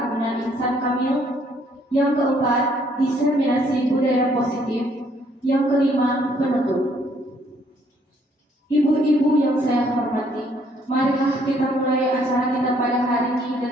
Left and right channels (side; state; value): both; normal; correlation 0.66